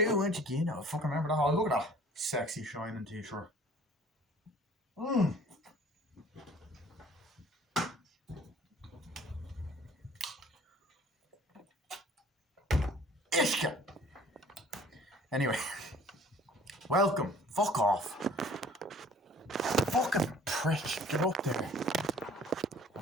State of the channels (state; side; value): normal; both; correlation 0.52